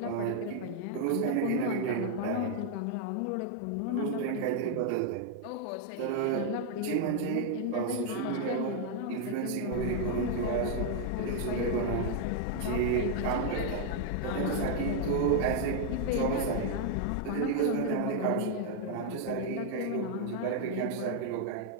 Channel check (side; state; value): both; different; correlation 0.00